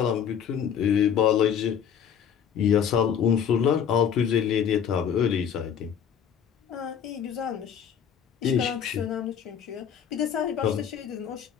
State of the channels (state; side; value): quieter; right; 8.2 dB